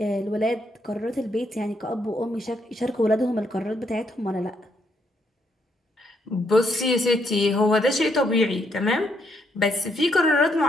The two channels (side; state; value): both; normal; correlation 0.75